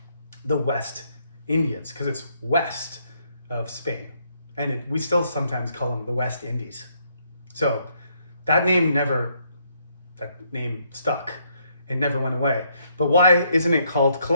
the West Indians because it's west of Spain. And we still sometimes call them the West Indies. So that name stuck. It never went away. But why isn't it called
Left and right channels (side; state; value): both; inverted; correlation -0.72